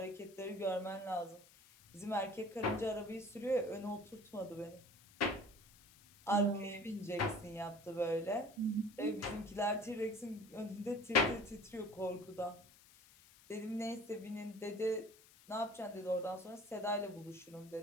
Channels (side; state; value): left; noise; hiss, 24 dB below the sound